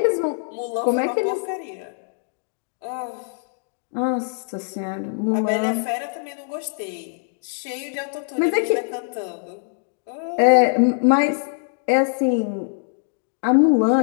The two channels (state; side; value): silent; right; digital silence